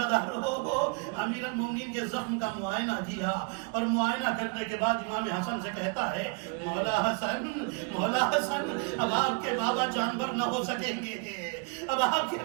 امیر المومنین کے زخم کا معائنہ کیا اور معائنہ کرنے کے بعد امام حسن سے کہتا ہے، مولا حسن، اب آپ کے بابا جانور نہ ہو سکیں گے، اب آپ کے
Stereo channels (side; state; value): left; quieter; 33.0 dB